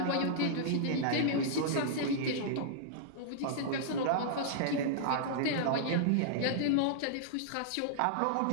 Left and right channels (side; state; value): both; different; correlation -0.02